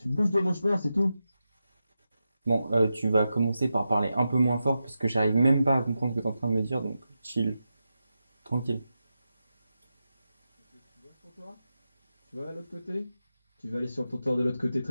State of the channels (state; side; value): inverted; both; correlation -0.90